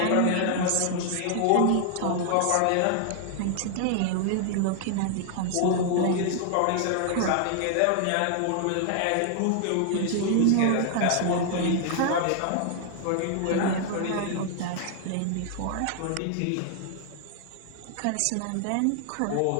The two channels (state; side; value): different; both; correlation 0.00